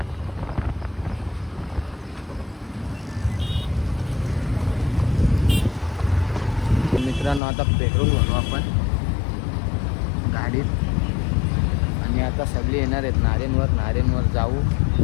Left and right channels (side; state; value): right; drops out; at 7.4 s